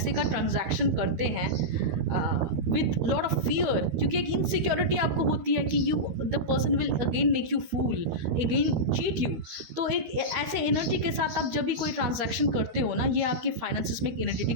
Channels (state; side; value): late; left; 13 ms